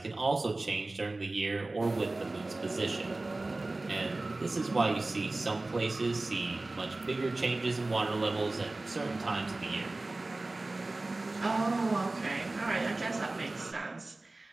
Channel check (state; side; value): quieter; left; 3.0 dB